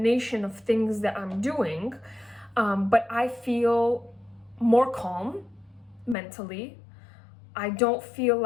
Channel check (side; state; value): right; drops out; at 6.2 s